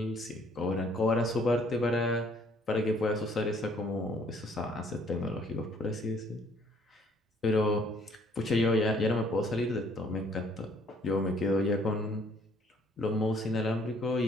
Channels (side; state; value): both; normal; correlation 0.62